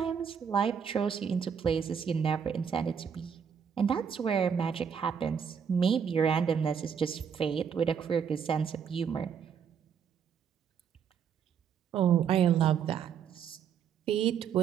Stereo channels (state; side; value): quieter; left; 7.3 dB